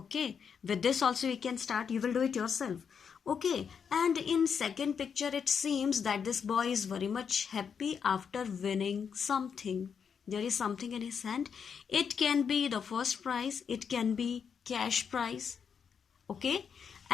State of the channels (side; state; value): right; quieter; 6.8 dB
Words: with this also you can start. You will do it yourself. Okay, and in second picture it seems that this boy is very much happy after winning something. There is something in his hand. It can be the first prize, it can be cash prize. Okay,